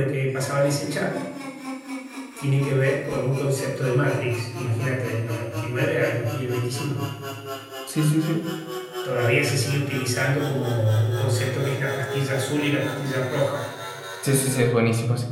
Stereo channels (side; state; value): both; identical; correlation 1.00